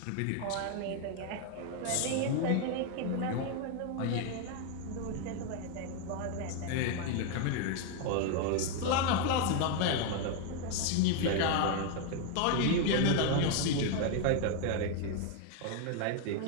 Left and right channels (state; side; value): different; both; correlation 0.01